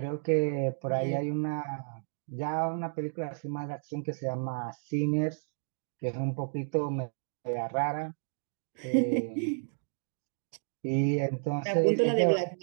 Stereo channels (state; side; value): silent; left; digital silence